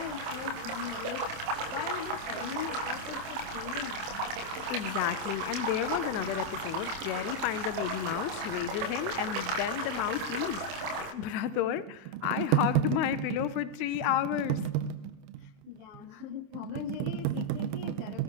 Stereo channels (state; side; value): late; left; 27 ms